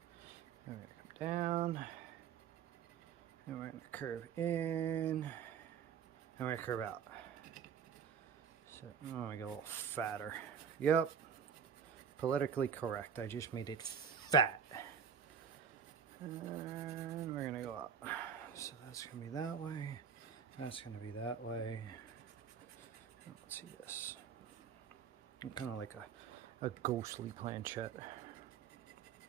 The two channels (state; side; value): quieter; left; 7.4 dB